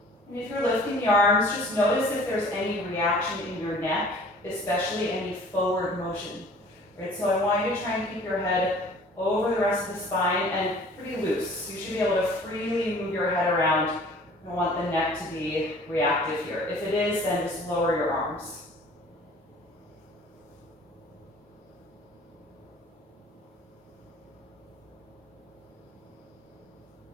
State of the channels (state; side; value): normal; both; correlation 0.50